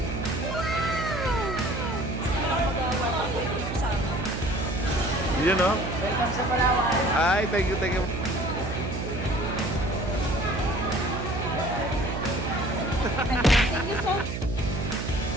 Yun, no? Welcome sa Palawan. Ay, thank you, thank you. Thank you so much.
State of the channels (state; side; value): noise; right; hum, 5 dB below the sound